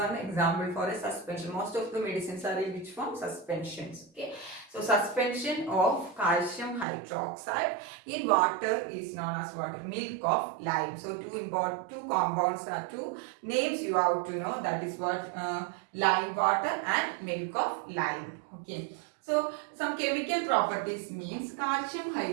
example for a suspension. Most of the medicines are in which form? Suspensions. Okay, so suspension of calcium hydroxide in water is known as what? Milk of lime. So two compounds are two names you have to know, that is what? Lime water and milk of lime. Okay, so some chemical properties means calcium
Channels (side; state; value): left; drops out; at 6.9 s